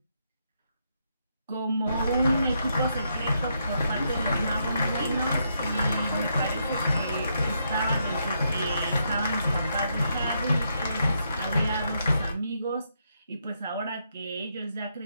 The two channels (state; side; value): inverted; both; correlation -0.78